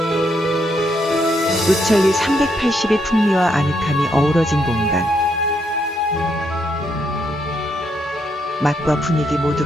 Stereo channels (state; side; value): normal; both; correlation 0.76